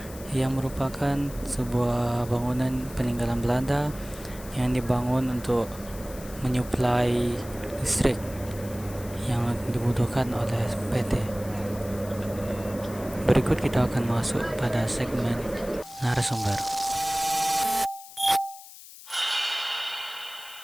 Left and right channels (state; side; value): noise; left; hiss, 17 dB below the sound